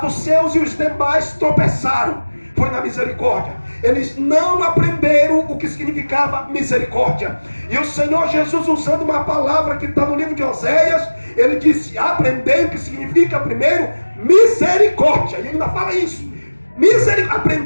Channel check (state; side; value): inverted; both; correlation -1.00